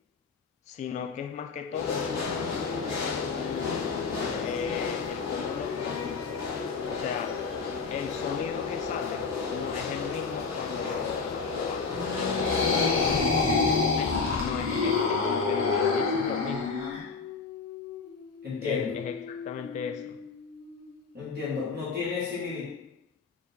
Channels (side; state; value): right; quieter; 4.7 dB